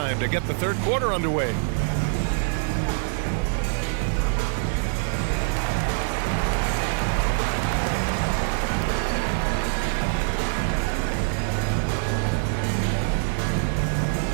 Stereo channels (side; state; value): left; silent; 62 dB below the other